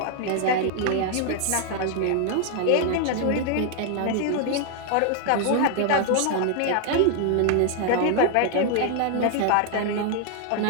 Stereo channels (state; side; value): different; both; correlation 0.00